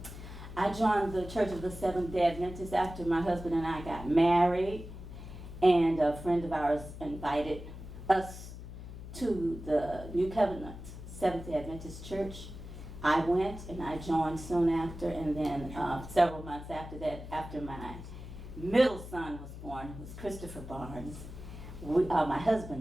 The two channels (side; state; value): left; noise; hum, 12 dB below the sound